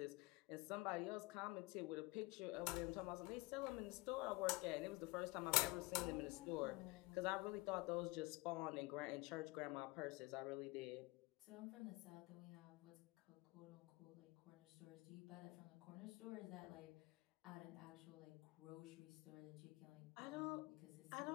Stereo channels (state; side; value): quieter; right; 23.0 dB